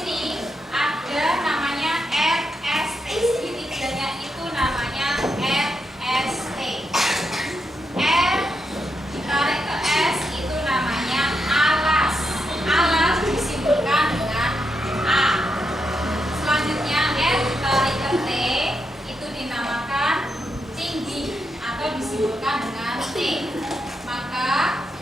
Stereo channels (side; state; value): both; normal; correlation 0.83